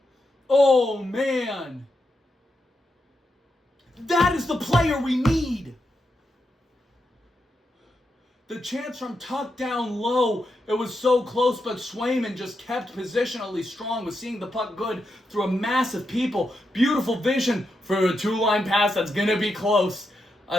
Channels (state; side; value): normal; both; correlation 0.85